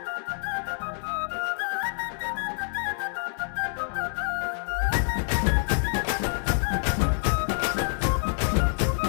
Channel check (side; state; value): right; silent; digital silence